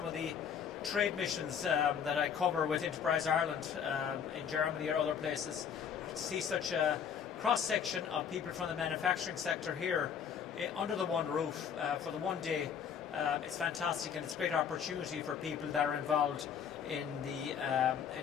of the trade missions that I cover with Enterprise Ireland in Germany or other places. To see such a cross-section of people from the manufacturing sector here under the one roof for the one day, it's fantastic, and it's a great opportunity for people that are involved in the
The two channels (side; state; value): right; quieter; 7.7 dB